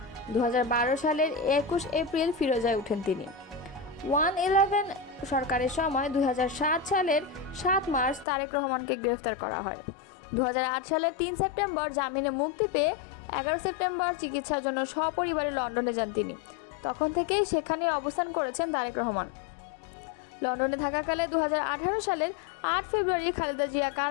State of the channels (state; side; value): drops out; right; at 8.2 s